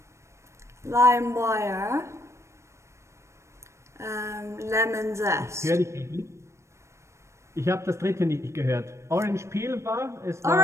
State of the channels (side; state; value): left; late; 0.13 ms